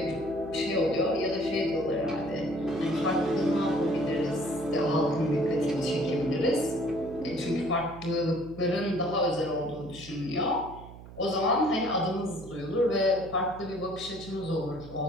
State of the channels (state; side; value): noise; right; hum, 16 dB below the sound